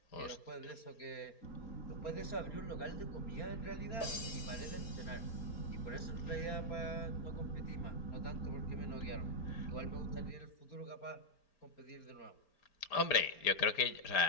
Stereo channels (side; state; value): right; late; 4.4 ms